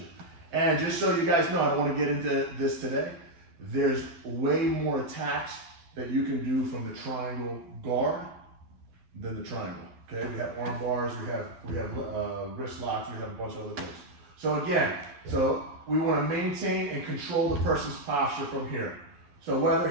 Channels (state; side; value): late; left; 12 ms